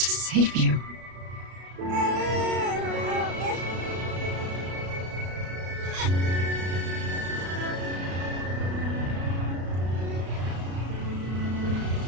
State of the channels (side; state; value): left; late; 33 ms